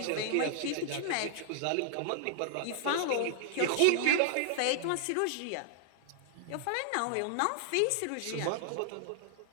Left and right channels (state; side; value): different; both; correlation -0.01